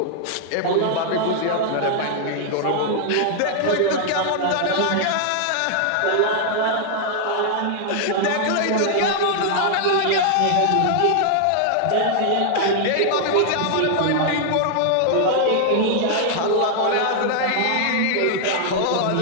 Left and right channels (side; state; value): both; different; correlation 0.00